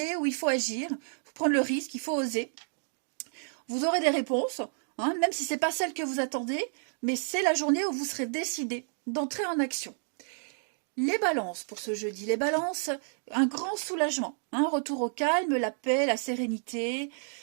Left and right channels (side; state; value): left; silent; 58 dB below the other